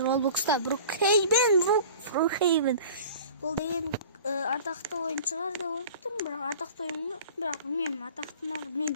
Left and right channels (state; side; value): inverted; both; correlation -0.42